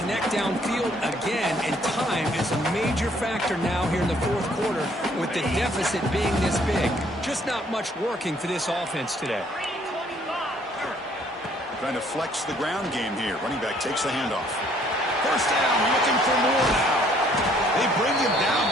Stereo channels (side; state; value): both; normal; correlation 0.63